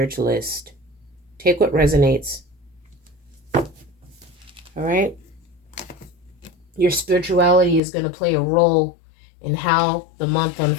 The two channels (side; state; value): right; drops out; at 7.8 s